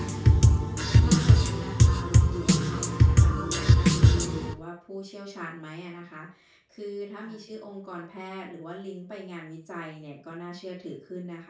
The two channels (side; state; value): both; identical; correlation 1.00